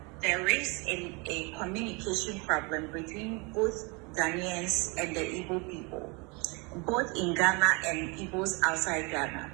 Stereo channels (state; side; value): quieter; left; 29.6 dB